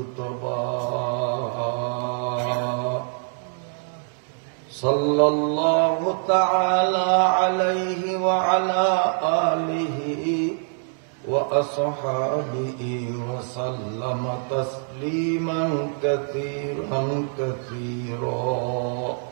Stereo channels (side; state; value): left; silent; 62 dB below the other